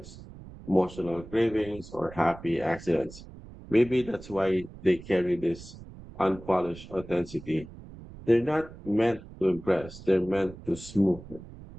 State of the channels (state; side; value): noise; right; rumble, 16 dB below the sound